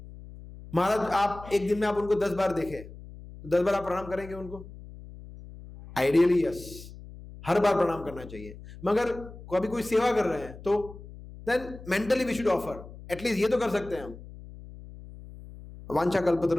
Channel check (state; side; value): noise; left; hum, 16 dB below the sound